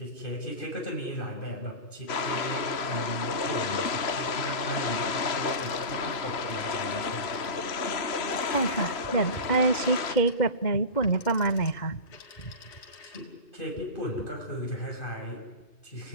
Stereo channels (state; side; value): late; right; 3.0 ms